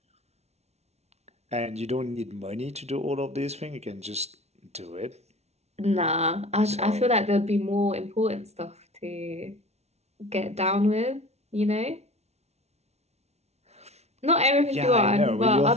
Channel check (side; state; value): left; late; 0.31 ms